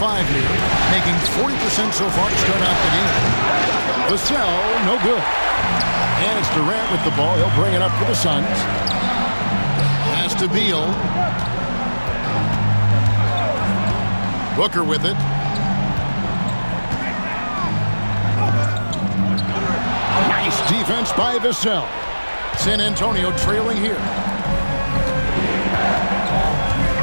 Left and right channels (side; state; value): both; inverted; correlation -1.00